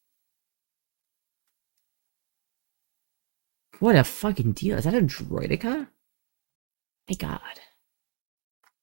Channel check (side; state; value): left; silent; digital silence